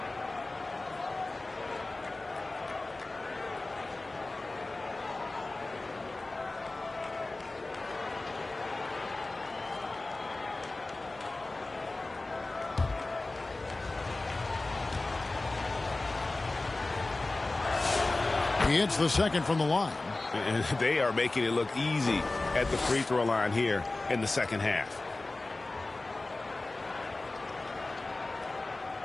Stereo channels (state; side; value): quieter; right; 3.1 dB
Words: He hits the second from the line. And they are making it look easy at the free throw line here in the second half.